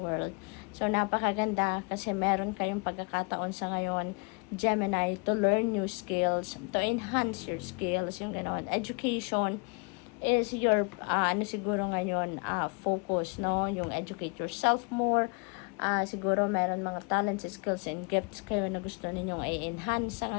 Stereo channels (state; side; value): quieter; right; 33.6 dB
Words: So, napakaganda kasi meron kayong pagkakataon sa ngayon, Gemini, to learn new skills, to enhance your skills, yung gano'n. Education is your, siguro ngayon, focus, no? Yung educate yourself more. Siguro meron mga talents, skills, and gifts kayo na gusto ninyong i-enhance sa